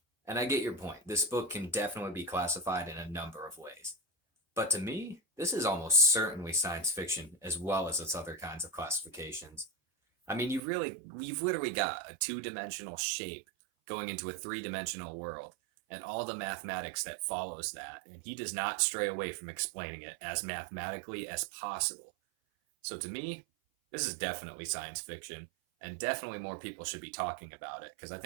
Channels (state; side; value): drops out; left; at 10.6 s